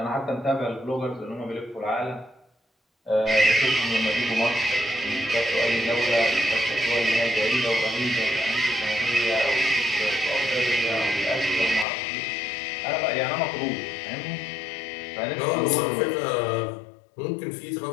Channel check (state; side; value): drops out; right; at 11.9 s